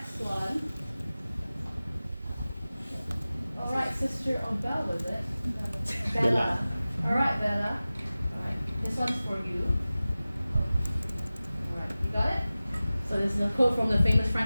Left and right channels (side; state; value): both; inverted; correlation -0.97